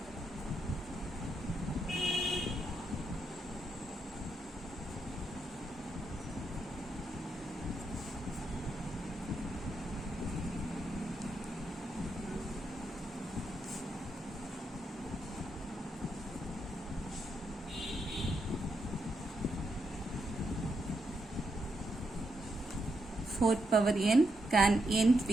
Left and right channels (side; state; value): both; normal; correlation 0.81